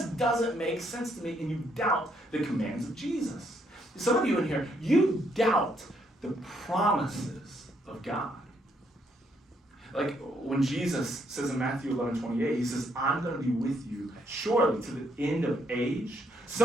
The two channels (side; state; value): both; normal; correlation 0.72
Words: doesn't make sense to me, and you doubt the commands of Jesus. Some of you in here, you doubt the promises of God. Like when Jesus says in Matthew 11:28, he says, I'm going to be with you surely to the end of age.